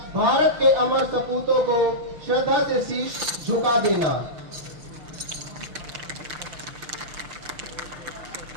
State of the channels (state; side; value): late; left; 6.2 ms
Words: भारत के अमर सपूतों को श्रद्धा से शीश झुका देना।